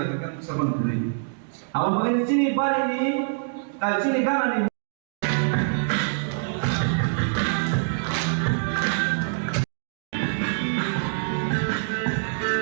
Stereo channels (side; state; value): left; silent; digital silence